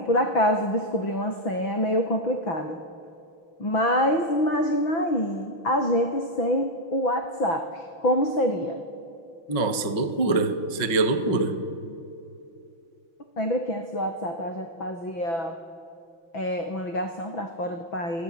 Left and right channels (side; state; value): right; late; 5.6 ms